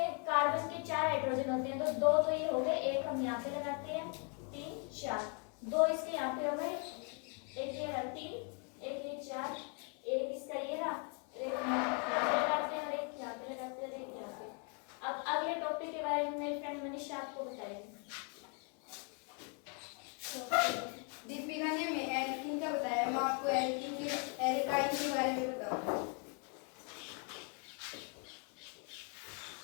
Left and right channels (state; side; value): quieter; right; 38.6 dB